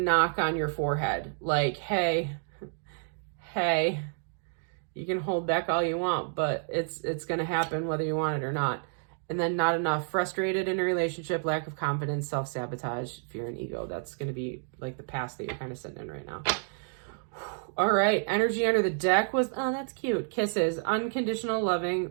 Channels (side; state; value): left; silent; digital silence